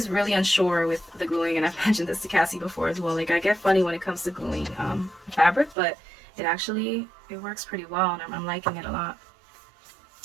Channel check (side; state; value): left; drops out; at 5.8 s